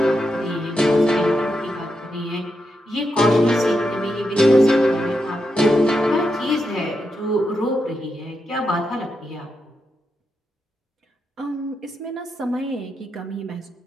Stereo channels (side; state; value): both; normal; correlation 0.85